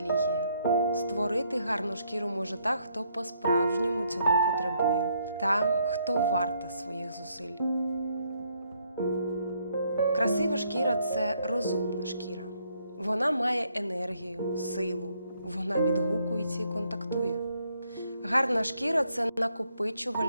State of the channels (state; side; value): inverted; both; correlation -0.72